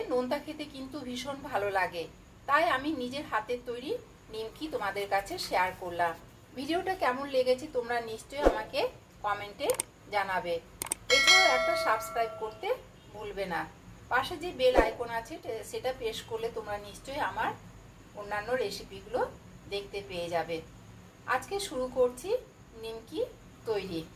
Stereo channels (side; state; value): both; identical; correlation 1.00